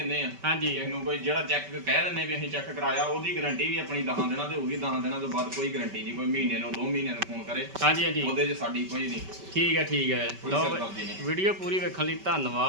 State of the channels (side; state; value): left; late; 5.2 ms